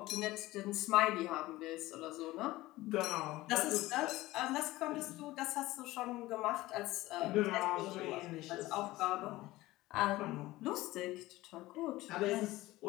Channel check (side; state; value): right; quieter; 18.1 dB